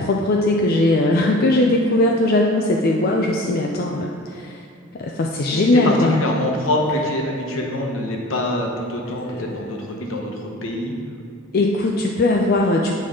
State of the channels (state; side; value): normal; both; correlation 0.41